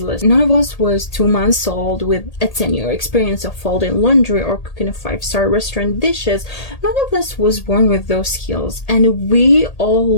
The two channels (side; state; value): right; late; 1.8 ms